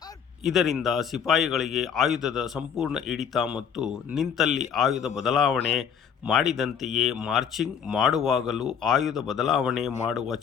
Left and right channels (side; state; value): right; quieter; 7.7 dB